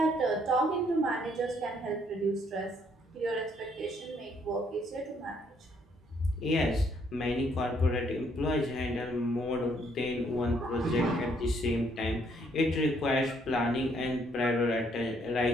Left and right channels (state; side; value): normal; both; correlation 0.68